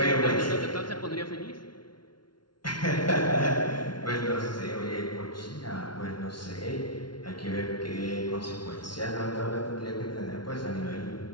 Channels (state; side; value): late; right; 0.71 ms